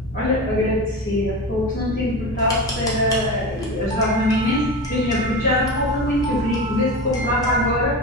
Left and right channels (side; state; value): both; normal; correlation 0.26